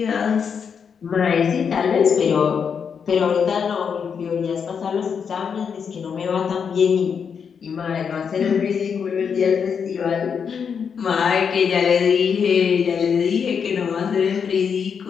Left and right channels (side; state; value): right; quieter; 6.7 dB